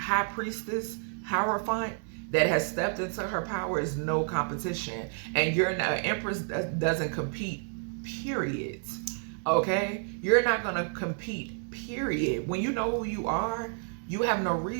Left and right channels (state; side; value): silent; left; 56 dB below the other